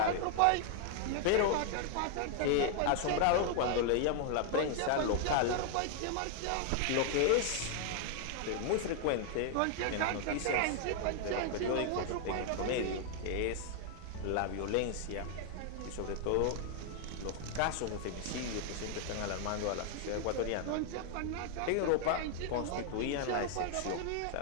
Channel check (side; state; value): both; different; correlation 0.00